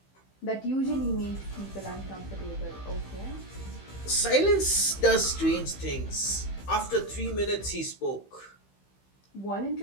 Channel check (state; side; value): late; right; 15 ms